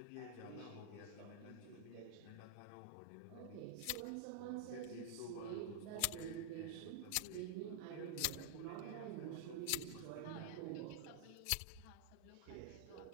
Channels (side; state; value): both; different; correlation -0.01